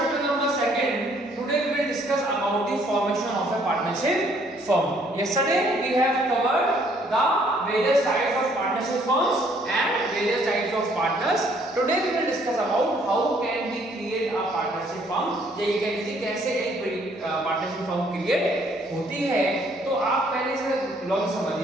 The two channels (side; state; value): both; normal; correlation 0.64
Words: number 2, today we will discuss about the formation of a partnership firm. Yesterday we have covered the various types of partnership firms and various types of partners. Today we will discuss about how can we create a partnership firm. ये कह लीजिए कैसे एक partnership firm create होती है. तो आप पहले से लॉजिक